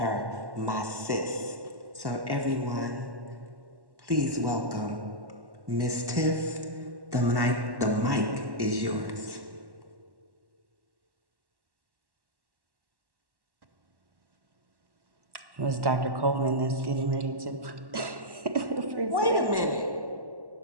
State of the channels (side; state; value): left; late; 1.1 ms